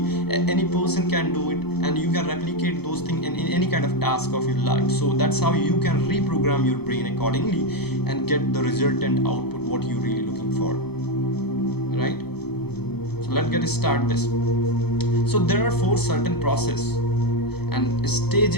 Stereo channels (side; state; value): right; late; 0.97 ms